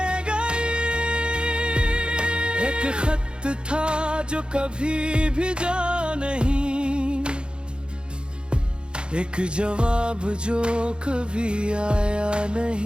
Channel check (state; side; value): late; left; 0.052 ms